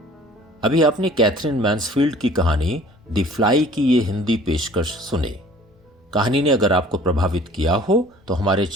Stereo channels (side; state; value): both; normal; correlation 0.51